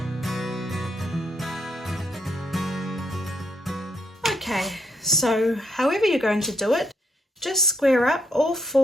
Okay, so however you're going to do it, just square up all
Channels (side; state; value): both; normal; correlation 0.75